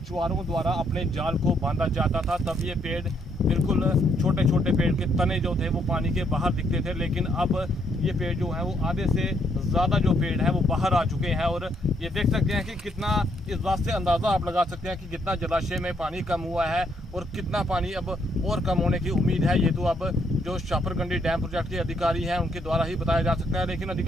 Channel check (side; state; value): both; normal; correlation 0.73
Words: द्वारा अपने जाल को बांधा जाता था। तब ये पेड़ बिल्कुल छोटे छोटे पेड़ के तने जो थे वो पानी के बाहर दिखते थे, लेकिन अब ये पेड़ जो है वो आधे से ज़्यादा जो पेड़ है वो बाहर आ चुके हैं। और ये देख सकते हैं कि कितना, इस बात से अंदाज़ा आप लगा सकते हैं कि कितना जलाशय में पानी कम हुआ है और कितना पानी अब और कम होने की उम्मीद है। ये तो अब जो शापरगंडी डैम प्रोजेक्ट के अधिकारी हैं उनके द्वारा ही बताया जा सकता है, लेकिन